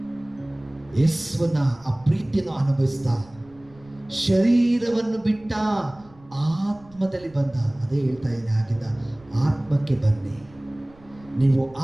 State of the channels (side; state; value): right; noise; rumble, 26 dB below the sound